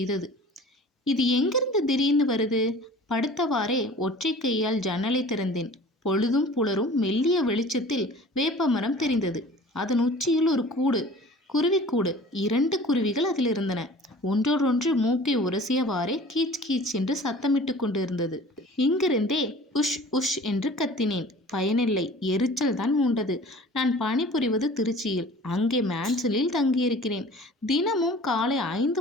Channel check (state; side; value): normal; both; correlation 0.45